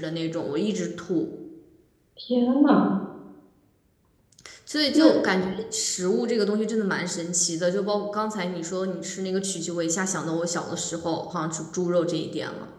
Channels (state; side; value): identical; both; correlation 1.00